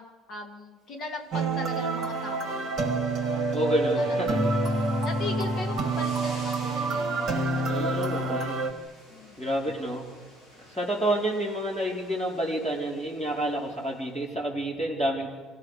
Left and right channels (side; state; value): both; normal; correlation 0.62